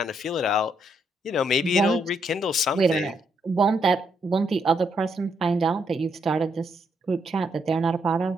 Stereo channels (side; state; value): both; normal; correlation 0.76